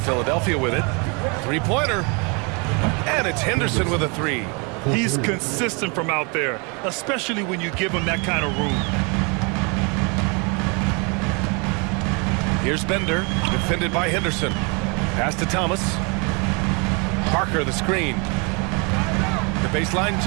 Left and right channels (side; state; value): left; quieter; 32.1 dB